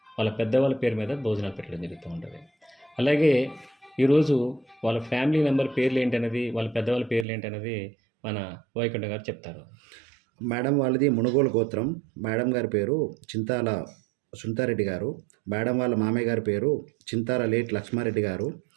వాళ్ళ పెద్దవాళ్ళ పేరు మీద భోజనాలు పెట్టడం జరుగుతూ ఉంటుంది. అలాగే ఈరోజు వాళ్ళ ఫ్యామిలీ మెంబర్ పేర్లు ఏంటనేది, వాళ్ళ పెద్దవాళ్ళ పేర్లు ఏంటనేది మన వైకుంఠ గారు చెప్తారు. మేడం వాళ్ళది మునుగోలు గోత్రం. మేడం గారి పేరు చింతాల సునీతారెడ్డి గారు. మేడం వాళ్ళ మామయ్య గారి పేరు చింతాల లేట్ లక్ష్మారెడ్డి గారు.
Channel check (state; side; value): drops out; left; at 7.2 s